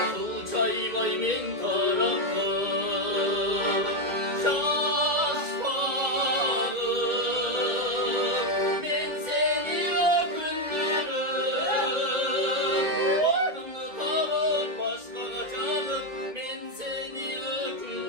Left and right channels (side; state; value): left; late; 1.8 ms